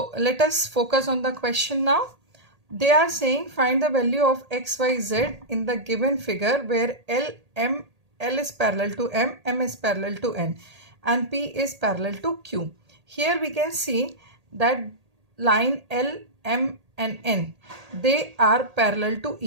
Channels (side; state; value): left; late; 1.8 ms